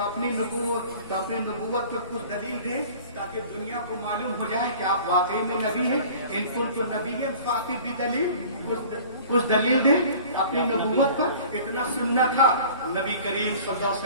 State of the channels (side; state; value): both; inverted; correlation -0.45